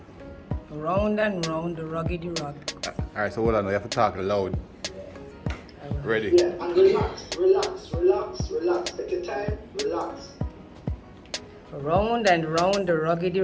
Round and round the rugged rock. Alright, so hold on, you have to talk loud. Ready? Yeah, and relax. Take your time, relax. Round and round the rugged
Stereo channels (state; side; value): identical; both; correlation 1.00